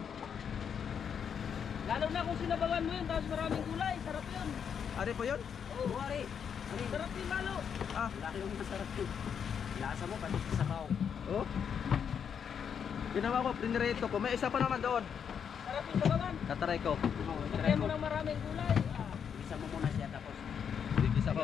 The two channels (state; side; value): quieter; right; 7.5 dB